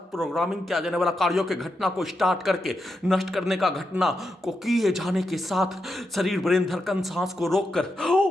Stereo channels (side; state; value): both; normal; correlation 0.86